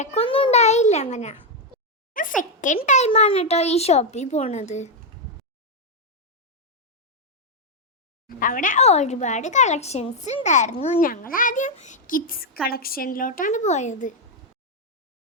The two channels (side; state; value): both; normal; correlation 0.01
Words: ഉണ്ടായില്ല. അങ്ങനെ സെക്കൻഡ് ടൈമാണ് കേട്ടോ ഈ ഷോപ്പിൽ പോണത്. അവിടെ ഒരുപാട് കളക്ഷൻസ് ഉണ്ടായിരുന്നു. ഞങ്ങൾ ആദ്യം കിഡ്സ് കളക്ഷനിലോട്ടാണ് പോയത്.